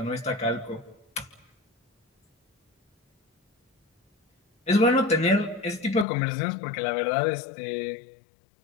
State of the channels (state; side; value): drops out; right; at 6.1 s